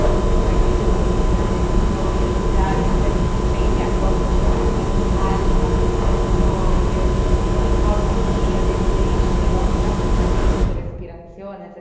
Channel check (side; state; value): both; identical; correlation 1.00